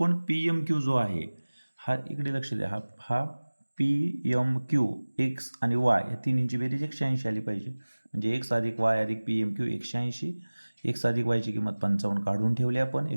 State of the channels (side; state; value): both; inverted; correlation -1.00